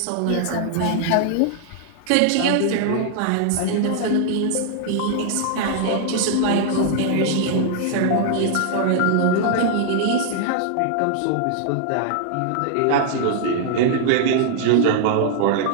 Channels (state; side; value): different; both; correlation -0.01